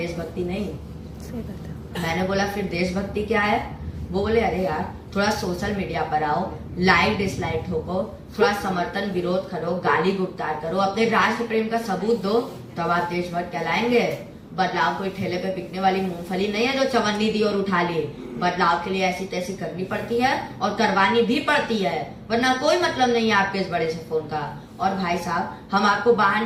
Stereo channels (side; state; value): both; identical; correlation 1.00